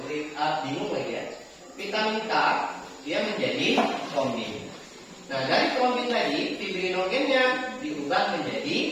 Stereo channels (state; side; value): identical; both; correlation 1.00